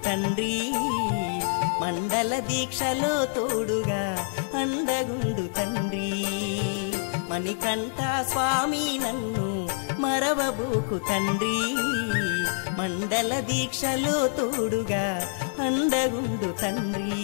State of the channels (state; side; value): silent; right; digital silence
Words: తండ్రి మండల దీక్షలో తోడుగా అండగుండు తండ్రి మణికంఠ స్వామి నన్ను మరవబోకు తండ్రి మండల దీక్షలో తోడుగా అండగుండు తండ్రి